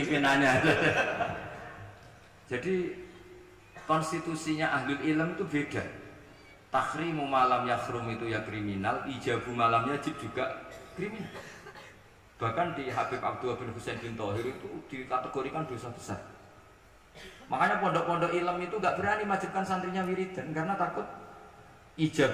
Jadi konstitusinya ahlul ilm itu beda. Takhrimu malam yakhrum itu ya kriminal, ijabu malam yajib juga kriminal. Bahkan di Habib Abdullah bin Husain bin Thohir itu dikategorikan dosa besar. Makanya pondok-pondok ilm itu gak berani wajibkan santrinya wiridan karena takut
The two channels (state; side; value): identical; both; correlation 1.00